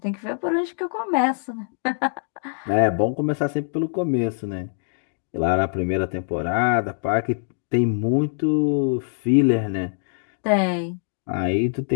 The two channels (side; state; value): right; silent; digital silence